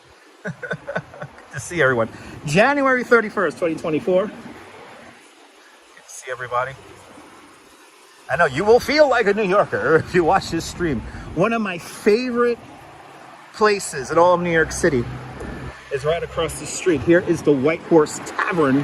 Good to see everyone. January 31st, 2024. Good to see everybody. I know you will feel like a New Yorker if you watch this stream. One of my favorite places in all of New York City is right across the street. Here is the White Horse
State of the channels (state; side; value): identical; both; correlation 1.00